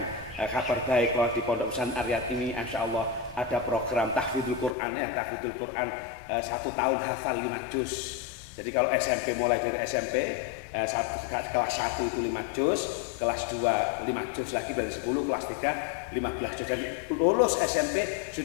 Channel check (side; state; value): right; drops out; at 4.8 s